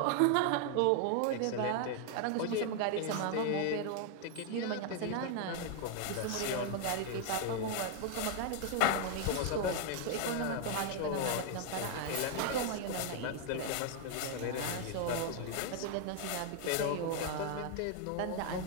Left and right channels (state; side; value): different; both; correlation 0.00